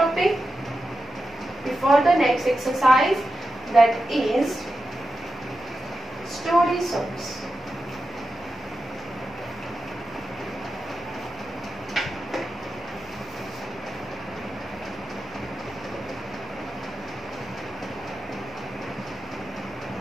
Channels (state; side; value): normal; both; correlation 0.90